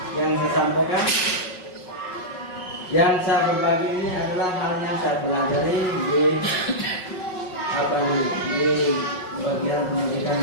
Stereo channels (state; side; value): late; right; 5.4 ms